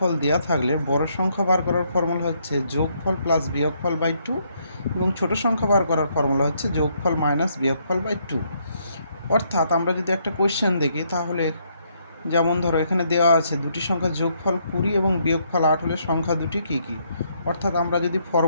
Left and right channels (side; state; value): both; inverted; correlation -0.72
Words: দেওয়া থাকলে বড় সংখ্যা বার করার ফর্মুলা হচ্ছে যোগফল প্লাস বিয়োগফল বাই 2 এবং ছোট সংখ্যা বার করার ফর্মুলা হচ্ছে যোগফল মাইনাস বিয়োগফল বাই 2। অর্থাৎ আমরা যদি একটা কোয়েশ্চেন দেখি তাহলে যেমন ধরো এখানে দেওয়া আছে দুটি সংখ্যার যোগফল 20 এবং বিয়োগফল 8 হলে সংখ্যা দুটি কী কী। অর্থাৎ আমরা যদি